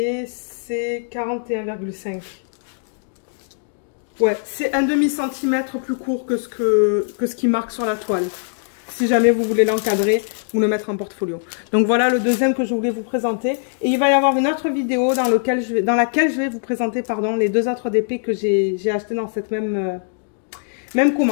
c'est 41,5. Ouais, c'est un demi-centimètre plus court que ce qui marque sur la toile. Si jamais vous voulez l'encadrer ou le mettre en portfolio. Donc voilà le deuxième que je voulais vous présenter. Et il va y avoir une autre vidéo dans laquelle je vais vous présenter les 2 autres DP que j'ai acheté dans cette même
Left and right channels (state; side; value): silent; right; digital silence